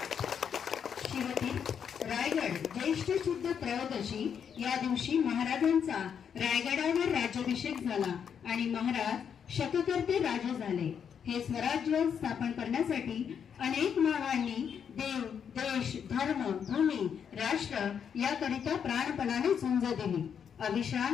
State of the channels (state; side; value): quieter; right; 7.6 dB